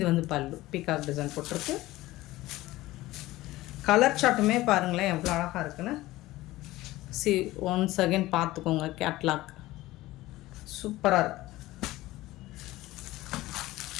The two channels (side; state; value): right; quieter; 17.6 dB